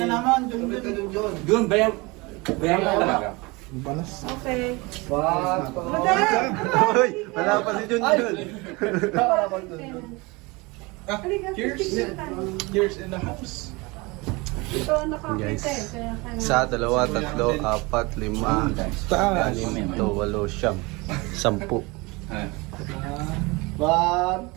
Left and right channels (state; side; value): quieter; left; 25.1 dB